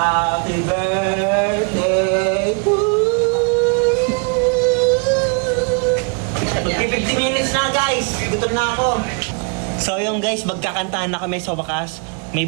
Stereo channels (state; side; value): quieter; left; 38.0 dB